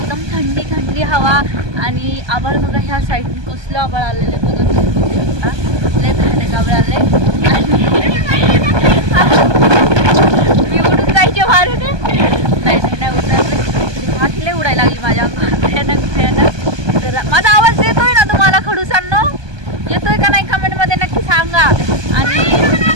थंडी थंडी हवा आणि आभाळ बघा, ह्या साईडने कसलं आभाळ आलेलं आहे बघा, तुम्ही बघू शकता. लय भयानक आभाळ आलंय आणि मी उडून जायचे मारून. नाही उडणार, माती लय उडायला लागली माझ्या अंगावर, भयानक. तर माझा आवाज येतोय ना तुम्हाला खडूसांनो? येतोय का नाही कमेंटमध्ये नक्की सांगा. आणि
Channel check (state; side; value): late; left; 1.2 ms